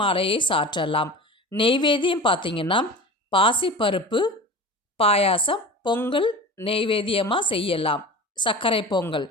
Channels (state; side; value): normal; both; correlation 0.35